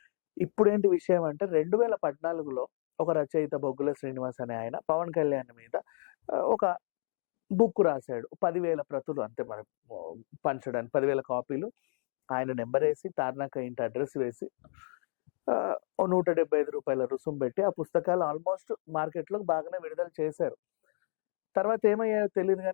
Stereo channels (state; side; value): silent; right; 57 dB below the other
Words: ఇప్పుడేంటి విషయం అంటే 2014లో ఒక రచయిత 'బొగ్గుల శ్రీనివాస్' అనే ఆయన 'పవన్ కళ్యాణ్' మీద ఒక బుక్ రాసాడు. 10,000 ప్రతులు అంతే మరి పంచడానికి 10,000 కాపీలు. ఆయన నంబరేసి, తార్నాక ఇంటి అడ్రెస్ వేసి ఓ రూ. 175 రుసుము పెట్టి ఆ పుస్తకాలు ఆల్మోస్ట్ మార్కెట్‌లో బాగానే విడుదల చేశారు. తర్వాత ఏమయ్యాయో తెలీదు